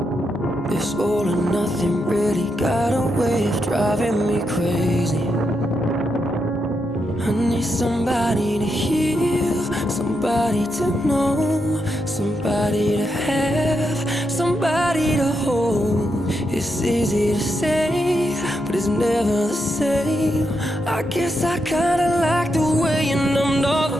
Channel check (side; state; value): both; normal; correlation 0.83